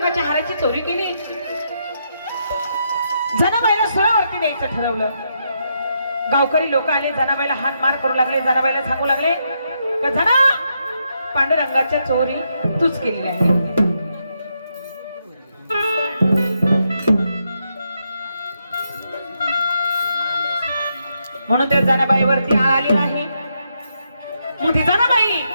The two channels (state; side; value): inverted; both; correlation -0.80